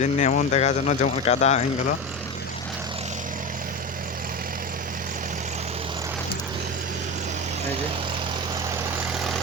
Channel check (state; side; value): normal; both; correlation 0.22